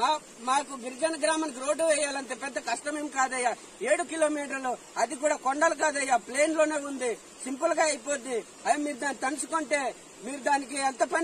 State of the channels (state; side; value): identical; both; correlation 1.00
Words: మాకు గిరిజన గ్రామానికి రోడ్డు వేయాలంటే పెద్ద కష్టమేం కాదయ్యా. 7 కిలోమీటర్లు, అది కూడా కొండలు కాదయ్యా, ప్లేన్ లోనే ఉంది, సింపుల్ గా అయిపోద్ది. అవి మీరు దాన్ని తలుచుకుంటే మీరు దానికి ఎంత